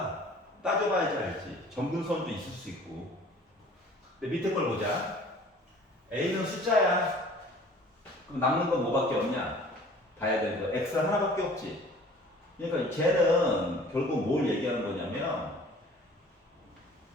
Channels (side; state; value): both; normal; correlation 0.49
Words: 따져봐야지 알지. 점근선도 있을 수 있고. 근데 밑에 걸 보자. A는 숫자야. 그럼 남는 건 뭐밖에 없냐? 봐야 되는 거. X가 하나밖에 없지. 그러니까 쟤는 결국 뭘 얘기하는 거냐면